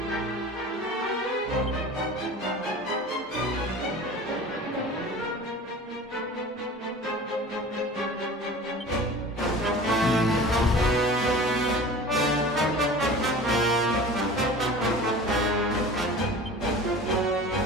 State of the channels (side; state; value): both; normal; correlation 0.39